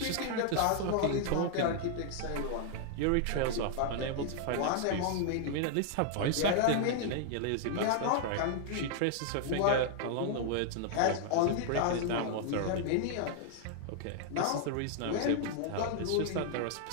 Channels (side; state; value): both; different; correlation -0.01